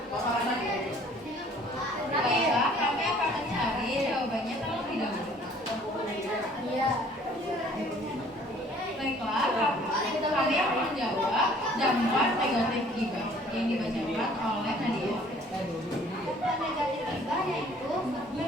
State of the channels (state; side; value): normal; both; correlation 0.55